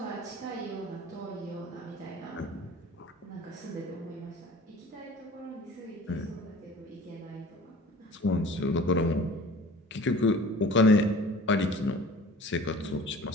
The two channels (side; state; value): both; normal; correlation 0.44